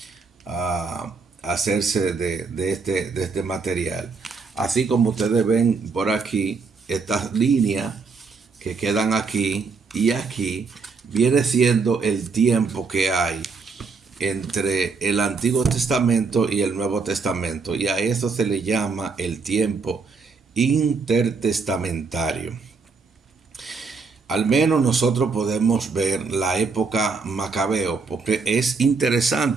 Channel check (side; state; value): left; quieter; 4.7 dB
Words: hacerse de este material. Así como ustedes ven por aquí, estas líneas que quedan aquí y aquí, viene siendo el tiempo que hay entre el Antiguo Testamento y el Nuevo Testamento. Y a eso se le llama el tiempo intertestamentario. Al menos nosotros podemos ver la época macabeo, porque es